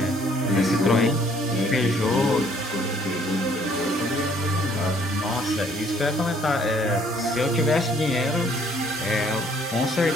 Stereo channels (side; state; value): both; normal; correlation 0.62